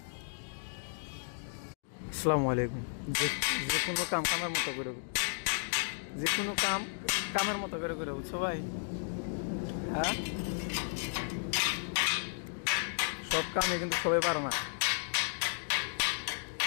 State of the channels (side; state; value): right; silent; digital silence